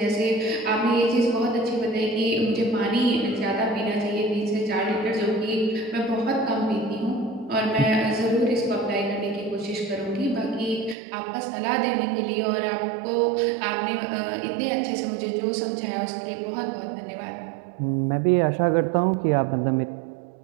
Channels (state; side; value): drops out; left; at 11.0 s